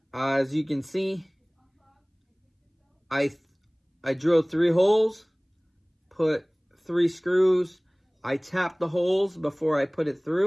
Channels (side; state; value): both; identical; correlation 1.00